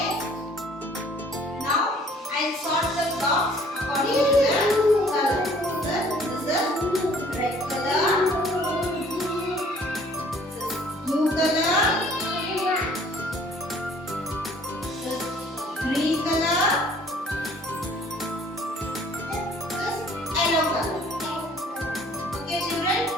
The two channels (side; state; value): both; normal; correlation 0.56